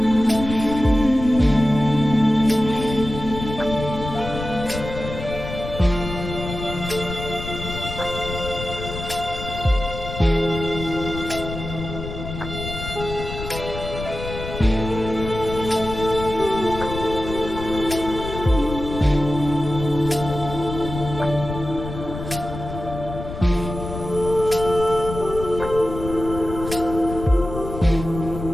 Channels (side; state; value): left; noise; rumble, 8 dB below the sound